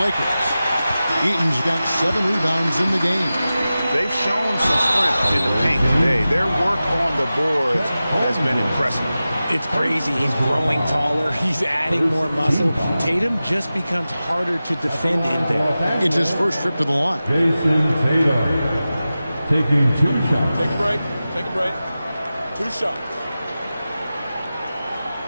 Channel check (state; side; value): inverted; both; correlation -0.95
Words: Eaton's got 7 rebounds in the game. They've shown some strength in the paint today. Their work on the boards has been impressive. It's crazy. He's growing taller. He's adding more muscle. Tatum just becomes harder to defend in there. It's his first trip to the line. Jason Tatum taking 2 shots. Take a break. Take a break. 2 shots.